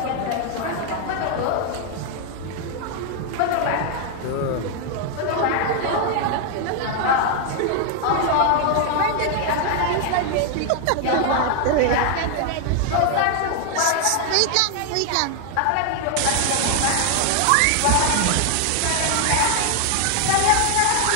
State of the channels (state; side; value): different; both; correlation 0.00